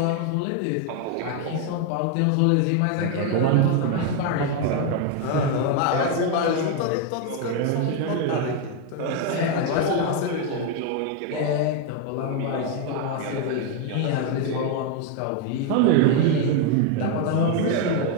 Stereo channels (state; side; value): different; both; correlation 0.01